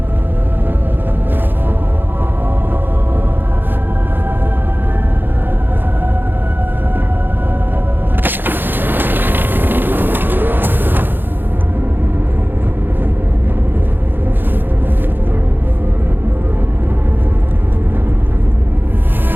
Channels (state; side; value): late; left; 0.096 ms